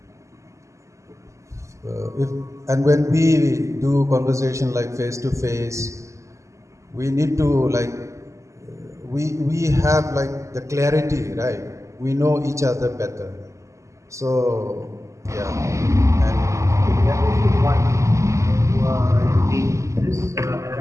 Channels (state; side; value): late; left; 0.15 ms